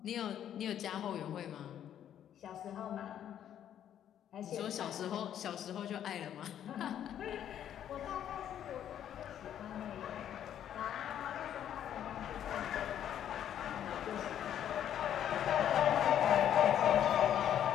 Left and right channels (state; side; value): quieter; right; 10.2 dB